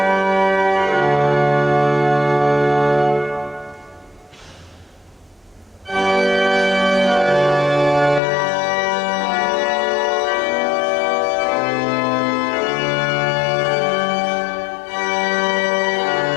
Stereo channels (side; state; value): right; drops out; at 8.2 s